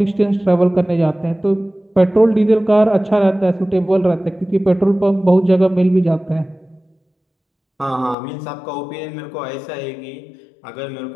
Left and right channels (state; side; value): drops out; right; at 8.2 s